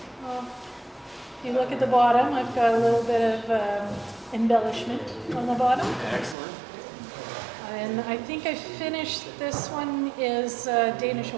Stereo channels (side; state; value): left; drops out; at 6.4 s